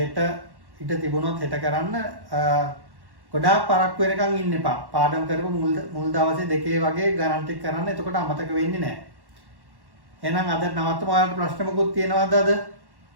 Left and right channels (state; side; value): late; left; 1.1 ms